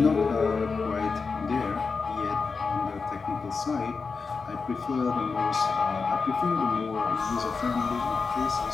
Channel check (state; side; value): quieter; right; 4.7 dB